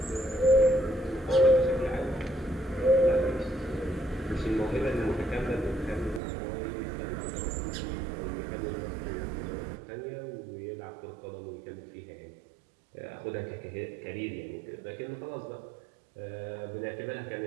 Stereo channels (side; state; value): left; drops out; at 6.2 s